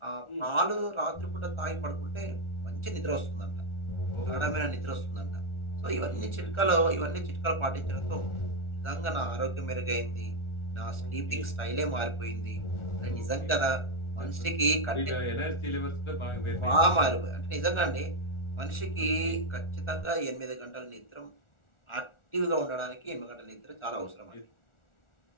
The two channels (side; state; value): right; late; 1.4 ms